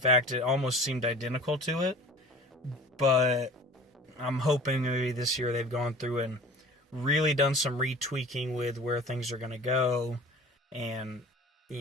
it almost seemed identical to it. But I'm hoping maybe this year they've gone through and really done some retweaking with where things are going to go. And,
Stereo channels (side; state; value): both; normal; correlation 0.42